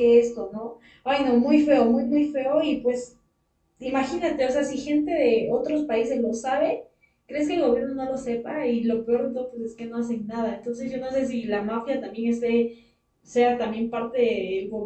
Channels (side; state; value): both; identical; correlation 1.00